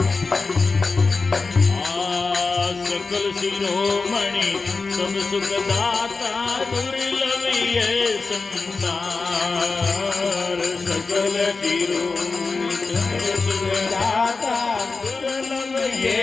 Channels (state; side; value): quieter; right; 4.1 dB